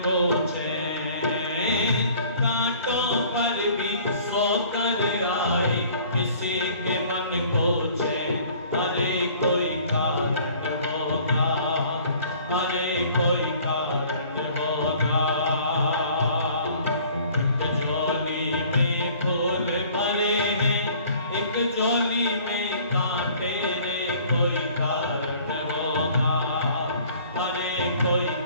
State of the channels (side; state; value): both; inverted; correlation -0.52